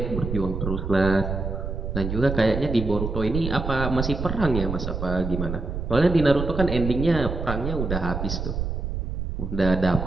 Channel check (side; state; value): right; noise; rumble, 4 dB below the sound